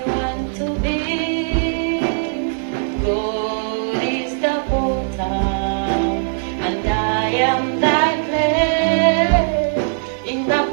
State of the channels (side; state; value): left; silent; digital silence